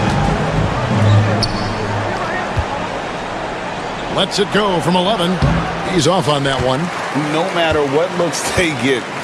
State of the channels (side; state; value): both; identical; correlation 1.00